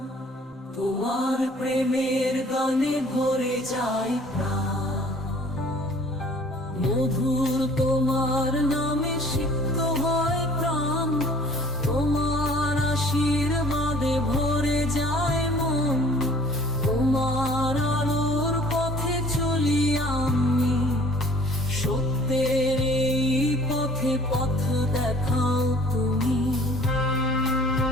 তোমার প্রেমের গানে ভরে যায় প্রাণ, মধুর তোমার নামে সিক্ত হয় প্রাণ। তোমার আশীর্বাদে ভরে যায় মন, তোমার আলোর পথে চলি আমি। সত্যের এই পথে পথ দেখাও তুমি।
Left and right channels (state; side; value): normal; both; correlation 0.52